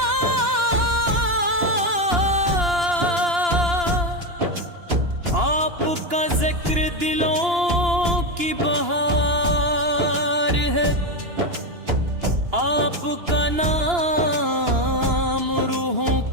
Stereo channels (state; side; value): late; left; 2.9 ms